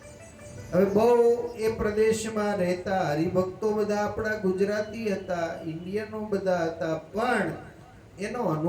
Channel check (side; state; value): both; identical; correlation 1.00